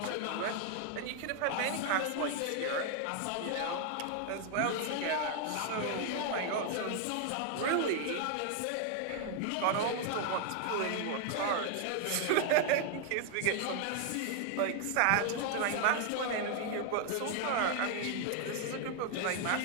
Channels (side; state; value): both; different; correlation 0.00